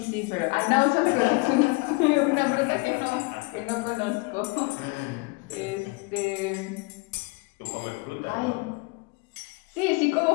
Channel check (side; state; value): right; quieter; 27.3 dB